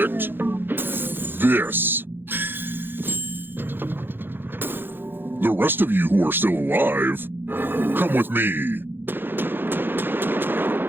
this? The rest of you who are still alive, come with me.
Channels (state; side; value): late; left; 0.10 ms